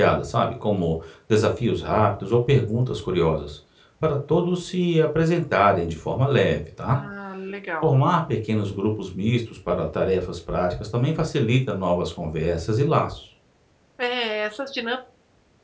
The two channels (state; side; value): identical; both; correlation 1.00